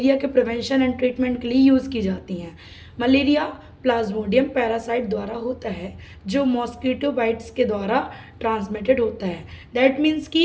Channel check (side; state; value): both; identical; correlation 1.00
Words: के प्रिवेंशन एंड ट्रीटमेंट के लिए यूज़ की जाती हैं। मलेरिया प्लाज्मोडियम पैरासाइट द्वारा होता है जो मॉस्किटो बाइट्स के द्वारा ट्रांसमिटेड होता है। दैट मीन्स